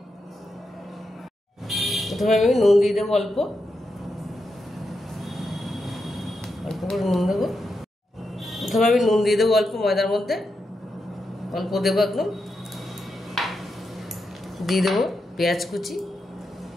প্রথমে আমি নুন দিয়ে দেবো, অল্প অল্প করে নুন দেবো। প্রথমে আমি নুন দিয়ে দেবো অল্প ময়দার মধ্যে, অল্প দেবো একদম। দিয়ে দেবো পেঁয়াজ কুচি,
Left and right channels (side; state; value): both; normal; correlation 0.86